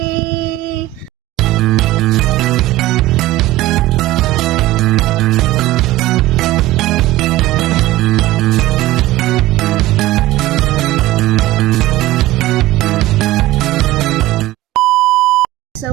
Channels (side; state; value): left; quieter; 16.8 dB